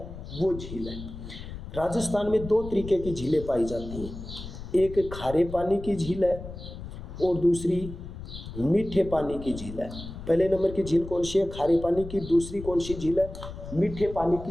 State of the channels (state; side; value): noise; left; rumble, 11 dB below the sound